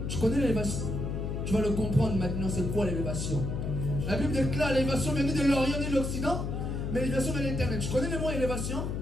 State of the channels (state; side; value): noise; left; hum, 3 dB below the sound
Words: Tu connais l'élévation? Tu vas le comprendre maintenant, c'est quoi l'élévation? La Bible déclare l'élévation vient ni de l'Orient ni de l'Occident, mais l'élévation vient de l'Éternel. Tu connais le mot élévation?